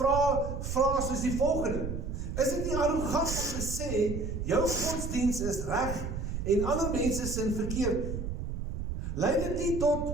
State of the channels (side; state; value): right; noise; rumble, 5 dB below the sound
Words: soos die volgende. Is dit nie arrogant om te sê, jou godsdiens is reg en ander mense sin verkeerd? Lei dit nie